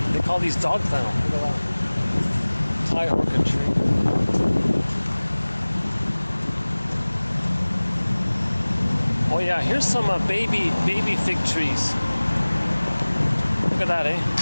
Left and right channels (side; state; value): both; inverted; correlation -1.00